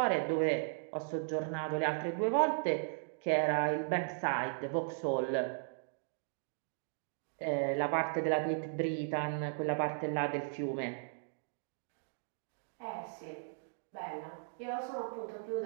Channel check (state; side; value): silent; left; digital silence